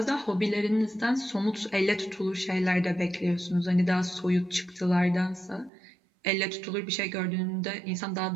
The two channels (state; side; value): drops out; left; at 5.7 s